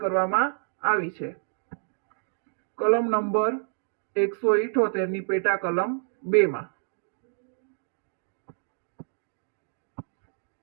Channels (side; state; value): left; silent; digital silence